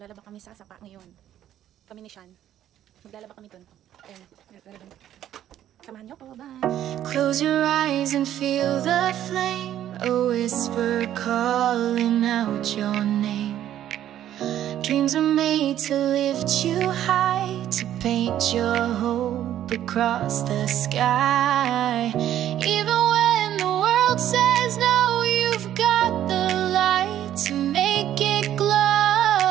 kami sa sapa ngayon. Kami ni Sean. Maglalaba kami dun. Ayan, maglalaba. Samahan niyo ko, bye! Close your eyes and feel the flame, a whisper calling out your name. Dreams are made to lift you high, to paint your hope across the sky. Even when the world says no, you've got the light to make it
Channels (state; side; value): quieter; left; 11.6 dB